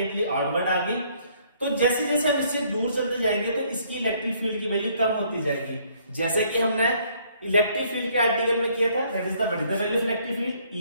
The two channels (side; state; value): both; inverted; correlation -0.64